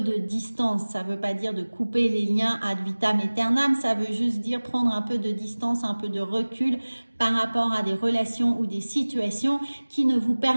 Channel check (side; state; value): both; inverted; correlation -1.00